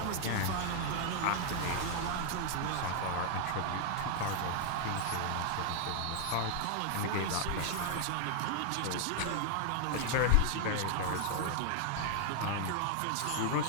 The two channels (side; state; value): both; different; correlation 0.00